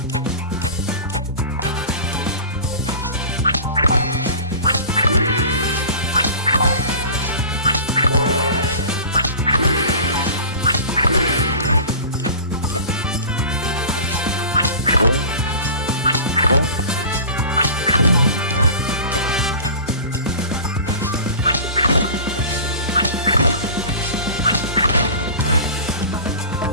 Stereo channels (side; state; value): both; inverted; correlation -0.37